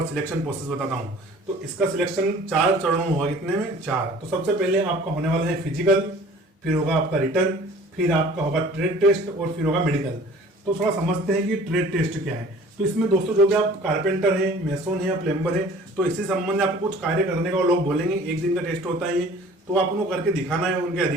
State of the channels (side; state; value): both; normal; correlation 0.48